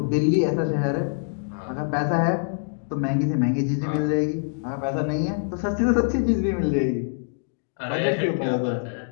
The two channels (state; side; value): silent; right; digital silence